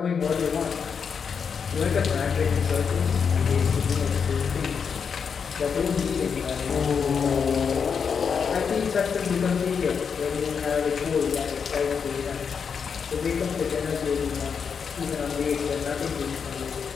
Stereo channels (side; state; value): right; quieter; 6.3 dB